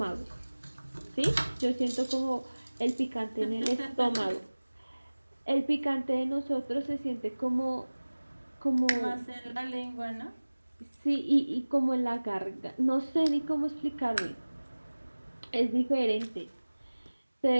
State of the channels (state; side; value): inverted; both; correlation -1.00